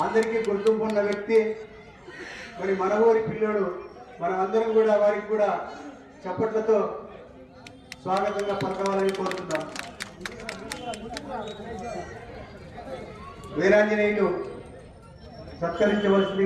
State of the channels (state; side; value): identical; both; correlation 1.00